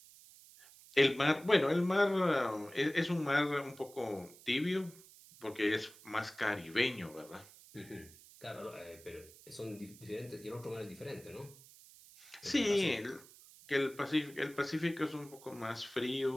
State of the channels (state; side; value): noise; right; hiss, 21 dB below the sound